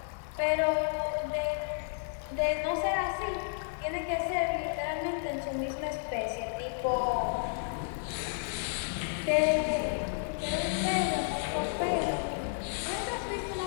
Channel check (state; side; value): silent; right; digital silence